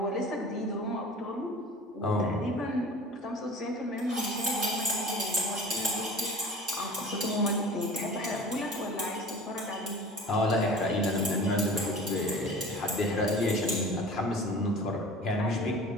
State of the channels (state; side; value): normal; both; correlation 0.41